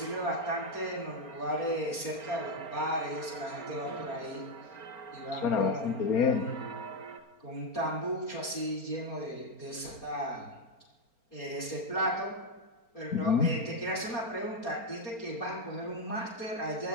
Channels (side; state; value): right; late; 4.4 ms